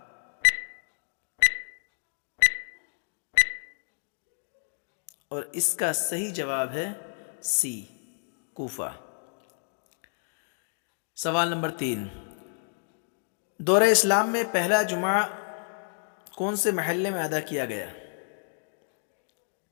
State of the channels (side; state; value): right; silent; digital silence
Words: اور اس کا صحیح جواب ہے سی کوفہ۔ سوال نمبر 3، دور اسلام میں پہلا جمعہ کون سے محلے میں ادا کیا گیا؟